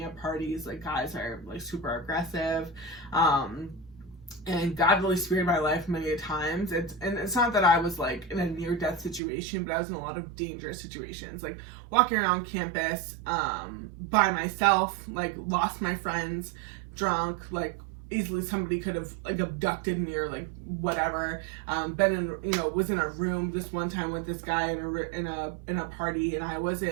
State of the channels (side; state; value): left; drops out; at 9.2 s